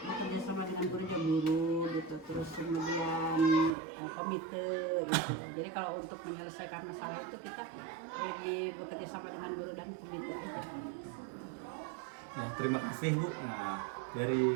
sama dengan guru gitu, terus kemudian komite gitu. Jadi kalau untuk menyelesaikan masalah itu kita lebih bekerja sama dengan guru dan komite. Nah, terima kasih Bu. Nah, dari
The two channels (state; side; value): drops out; left; at 3.8 s